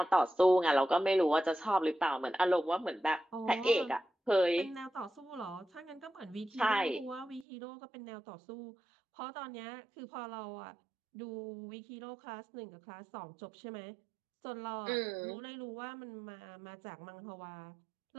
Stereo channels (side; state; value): left; drops out; at 7.5 s